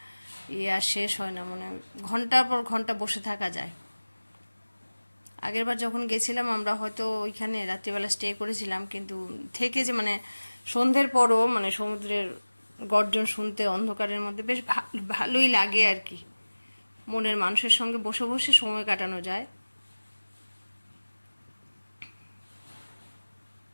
আর শেষ হয় না, মানে ঘন্টার পর ঘন্টা বসে থাকা যায়। আগেরবার যখন গেছিলাম আমরা হয়তো ওইখানে রাত্রিবেলা স্টে করেছিলাম, কিন্তু থেকে যে মানে সন্ধ্যের পরও মানে সমুদ্রের গর্জন শুনতে অন্ধকারের মধ্যে বেশ ভালোই লাগে আর কি, মনের মানুষের সঙ্গে বসে বসে সময় কাটানো যায়।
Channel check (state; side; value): inverted; both; correlation -1.00